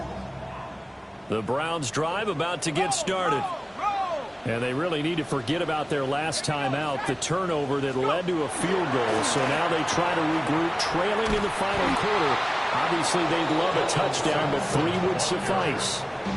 The Browns drive about to get started. And they really need to forget about their last time out, the turnover that led to a field goal. So now they try to regroup, trailing in the final quarter. Obviously, they'd love a touchdown, but 3 would suffice.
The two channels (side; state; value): both; identical; correlation 1.00